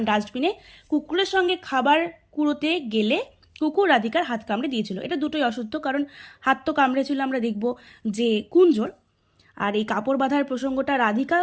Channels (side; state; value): both; identical; correlation 1.00